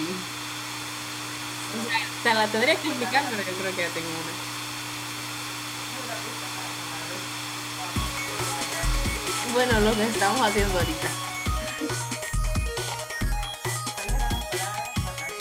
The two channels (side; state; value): both; identical; correlation 1.00